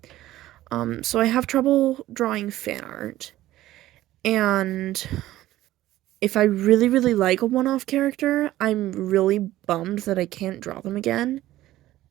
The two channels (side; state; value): left; quieter; 15.1 dB